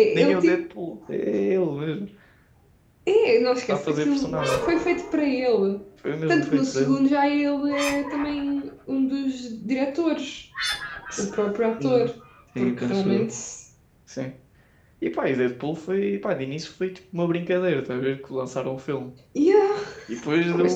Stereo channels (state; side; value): identical; both; correlation 1.00